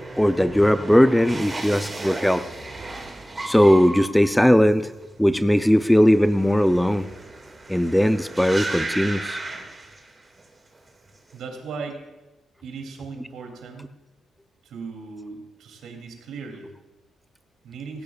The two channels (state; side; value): normal; both; correlation 0.98